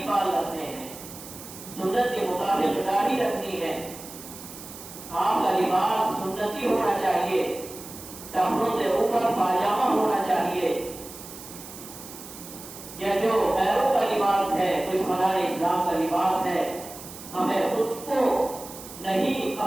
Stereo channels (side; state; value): right; noise; hiss, 14 dB below the sound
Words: بال رکھنے ہیں، سنت کے مطابق داڑھی رکھنی ہے. آپ کا لباس سنتی ہونا چاہیے، ٹخنوں سے اوپر پاجامہ ہونا چاہیے. یا جو پیروں کا لباس ہے، دشمنان اسلام کا لباس ہے، ہمیں اس کو نہیں